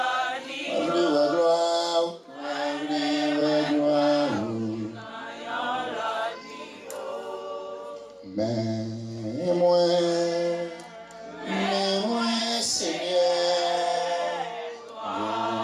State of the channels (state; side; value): identical; both; correlation 1.00